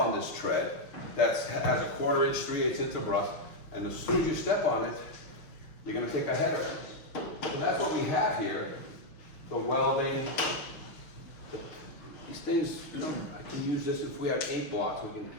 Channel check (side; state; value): right; late; 5.9 ms